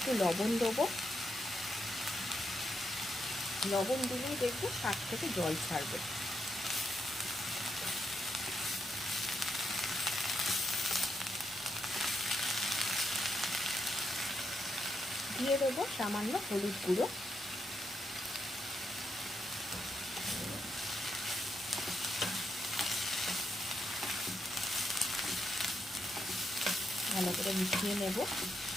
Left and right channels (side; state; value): both; normal; correlation 0.81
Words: লবণ দেবো। লবণ দিলেই দেখবে শাক থেকে জল ছাড়বে। দিয়ে দেবো সামান্য হলুদ গুঁড়ো। ভালো করে মিশিয়ে নেব।